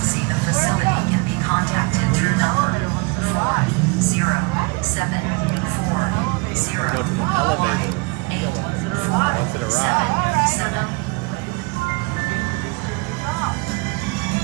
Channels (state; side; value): quieter; left; 28.4 dB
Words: the facility can be contacted through number 40740. Go to the elevator. 8 Once it arrives. 7.